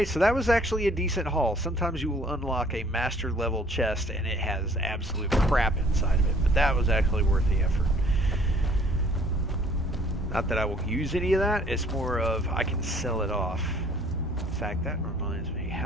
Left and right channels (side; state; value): both; normal; correlation 0.58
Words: so that was actually a decent haul. Sometimes you will unlock a master level chest and it has absolute crap inside of it, but that was actually worth the effort. Not that I will use any of that, it's more of I can sell it off. In fact, that reminds me,